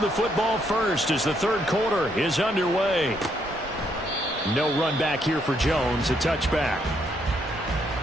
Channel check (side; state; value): both; normal; correlation 0.73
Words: the football first as the third quarter is underway. No run back here for Jones. A touchback.